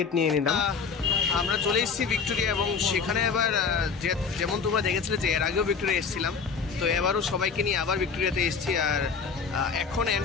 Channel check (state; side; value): quieter; right; 5.6 dB